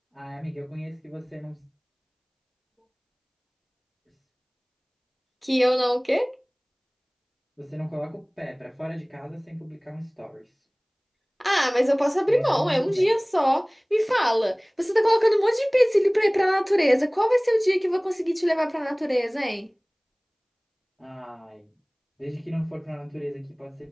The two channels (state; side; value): identical; both; correlation 1.00